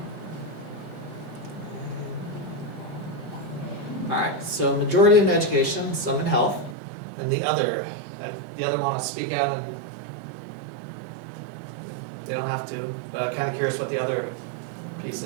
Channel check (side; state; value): left; drops out; at 6.8 s